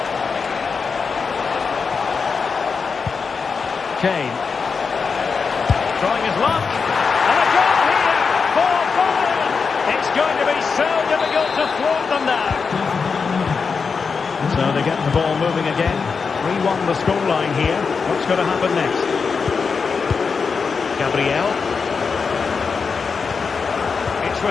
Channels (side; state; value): right; quieter; 5.3 dB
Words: Kane. Trying his luck. And a goal here for Bayern. It's going to be so difficult to thwart them now. So they get the ball moving again. 3-1 the scoreline here. What's going to happen next? Gabriel. It's